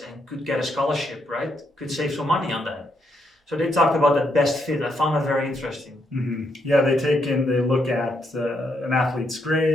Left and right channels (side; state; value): both; normal; correlation 0.77